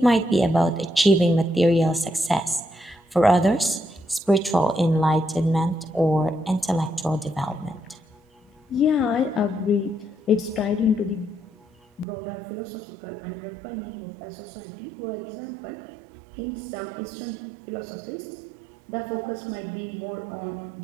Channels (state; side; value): drops out; left; at 12.1 s